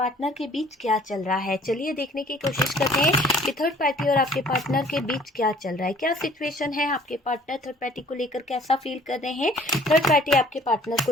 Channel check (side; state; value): both; normal; correlation 0.55